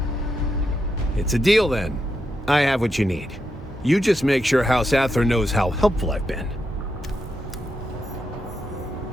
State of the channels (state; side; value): normal; both; correlation 0.84